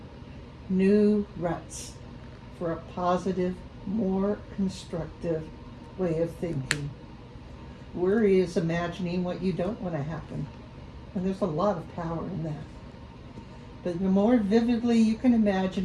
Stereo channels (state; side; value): identical; both; correlation 1.00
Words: for a positive, more constructive way of thinking. Worry is imagining what you don't want to happen. And there's a lot of power in that. But the more vividly you can